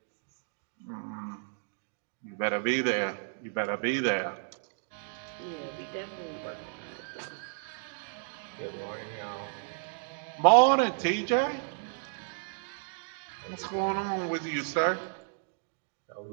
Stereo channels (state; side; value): silent; left; digital silence